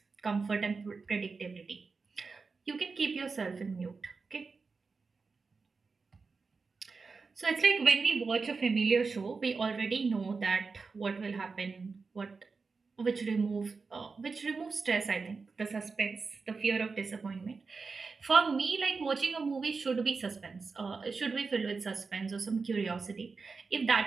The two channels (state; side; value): quieter; left; 4.5 dB